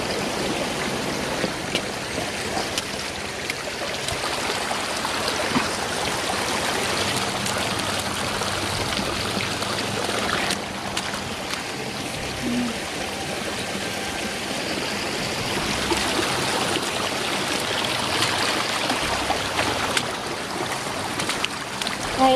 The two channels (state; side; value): identical; both; correlation 1.00